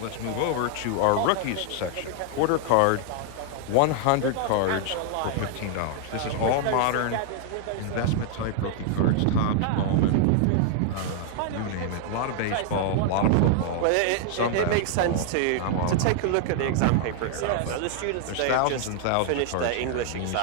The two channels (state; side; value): different; both; correlation 0.00